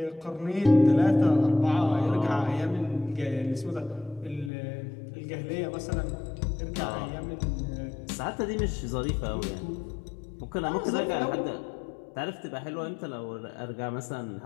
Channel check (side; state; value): right; drops out; at 4.5 s